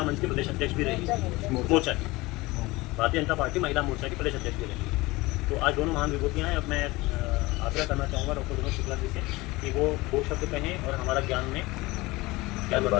मंच की प्रदेश अध्यक्ष भी रही, मोर्चा की, भारतीय जनता पार्टी महिला मोर्चा की प्रदेश अध्यक्ष भी रही। तो आज दोनों महान विभूतियाँ हैं। अब मैं आग्रह करना चाहूँगा डॉक्टर विनोद शुक्ला जी से कि वो दो शब्द कहें और हमारा ज्ञान में क्या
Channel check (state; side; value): quieter; right; 21.4 dB